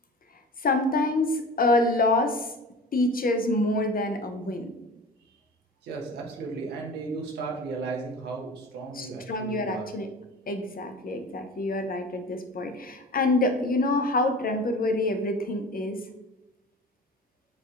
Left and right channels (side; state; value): both; normal; correlation 0.38